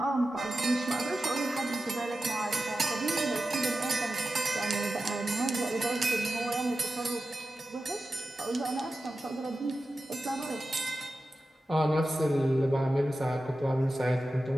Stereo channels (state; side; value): normal; both; correlation 0.93